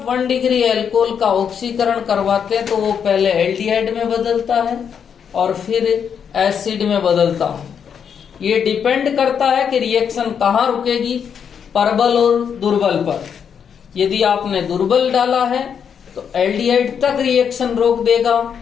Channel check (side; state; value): right; quieter; 7.5 dB